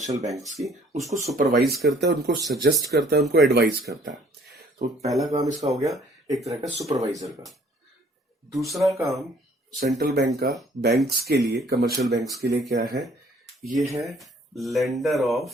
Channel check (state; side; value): normal; both; correlation 0.59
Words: बैंक्स की, उसको सुपरवाइज करता है, उनको सजेस्ट करता है, उनको एडवाइज करता है। तो पहला काम इसका हो गया एक तरह का सुपरवाइजर का। दूसरा काम सेंट्रल बैंक का बैंक्स के लिए, कमर्शियल बैंक्स के लिए क्या है? ये है lender